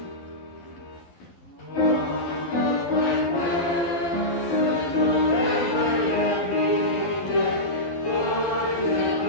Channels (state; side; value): late; right; 11 ms